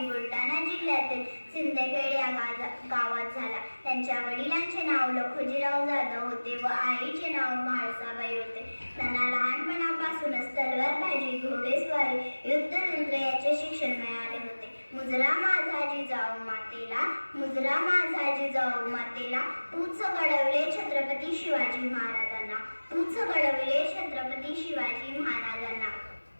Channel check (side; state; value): both; inverted; correlation -1.00